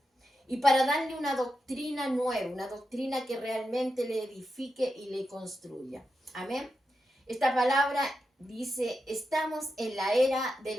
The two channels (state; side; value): normal; both; correlation 0.88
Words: y para darle una doctrina nueva, una doctrina que realmente le edifique y le construya. Amén. Esta palabra dice, estamos en la era de